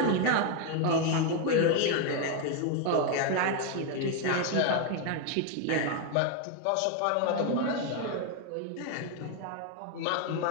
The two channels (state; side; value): different; both; correlation 0.01